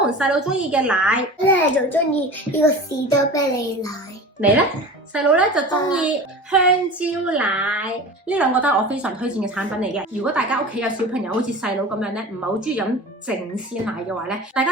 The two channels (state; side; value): normal; both; correlation 0.34